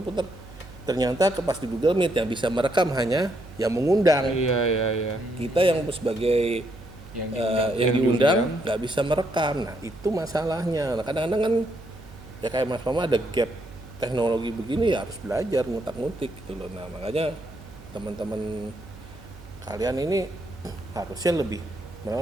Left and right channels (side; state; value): right; noise; hum, 19 dB below the sound